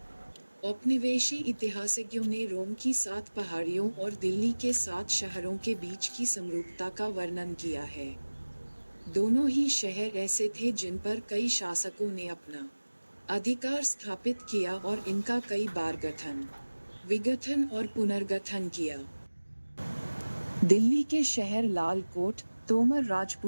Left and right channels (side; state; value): both; inverted; correlation -1.00